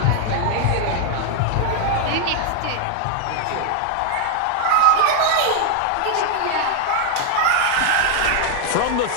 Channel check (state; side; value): different; both; correlation 0.00